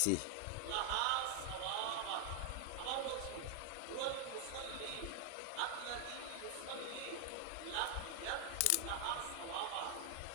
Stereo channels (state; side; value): different; both; correlation 0.00